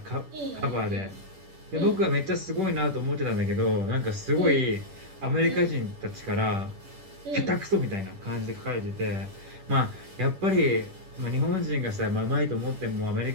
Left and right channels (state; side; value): late; left; 10 ms